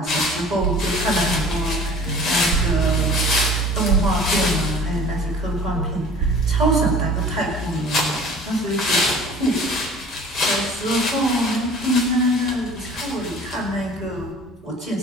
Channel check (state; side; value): normal; both; correlation 0.46